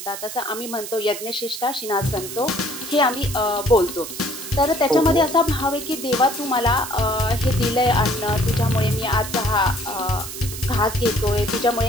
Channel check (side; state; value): right; noise; hiss, 9 dB below the sound